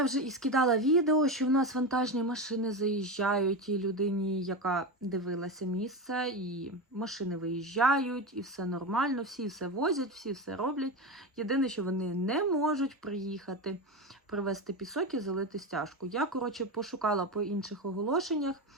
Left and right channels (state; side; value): normal; both; correlation 0.19